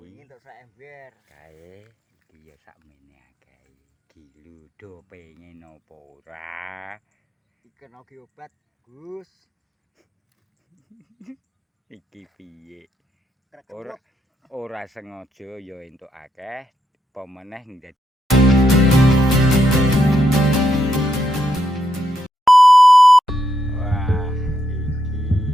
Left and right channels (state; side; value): normal; both; correlation 0.80